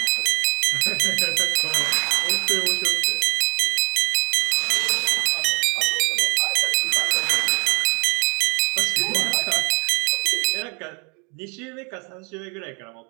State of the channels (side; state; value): left; quieter; 33.9 dB